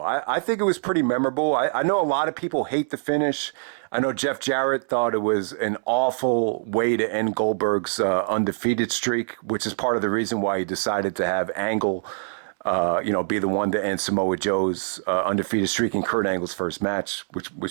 I think it was pretty memorable. I know a lot of people hate the finish. I know Jeff Jarrett thought it was an awful way to end Goldberg's undefeated streak, which is part of the reason why he decided to have Angle be the one to end Samoa Joe's undefeated streak in Kurt Angle's first match,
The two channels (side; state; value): left; silent; 62 dB below the other